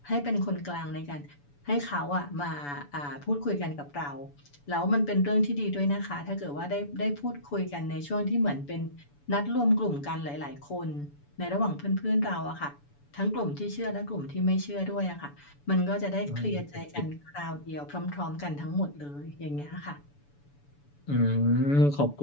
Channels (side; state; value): right; late; 7.0 ms